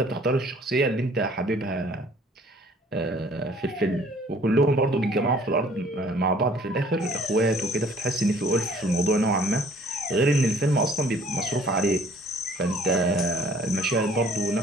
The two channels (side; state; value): both; normal; correlation 0.56